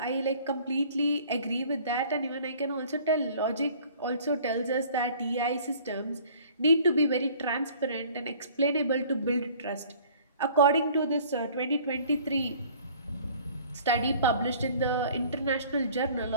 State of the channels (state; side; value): inverted; both; correlation -0.51